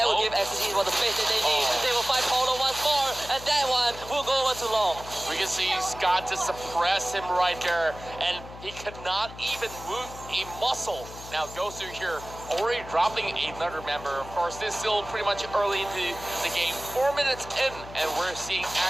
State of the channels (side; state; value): left; noise; hum, 15 dB below the sound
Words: will give Axis Esports the space that they need. They will fight Paulo once more, and that one will go over too long. We can see Scott to suppress him right there, and he could not even move a muscle. Now Gosu here already dropping another member. Of course, this is still pretty much early into the game, 4 minutes in, and we're seeing